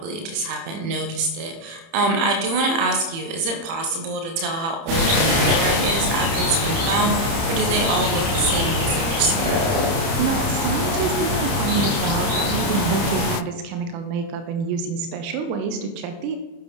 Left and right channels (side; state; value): left; late; 30 ms